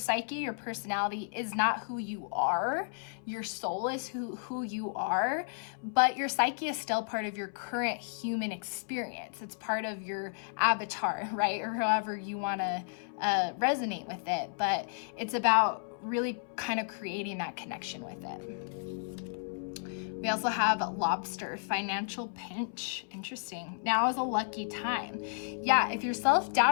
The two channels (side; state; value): right; silent; 56 dB below the other